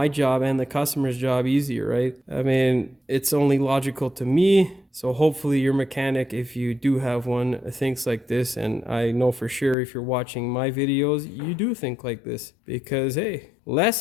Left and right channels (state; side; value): drops out; right; at 9.8 s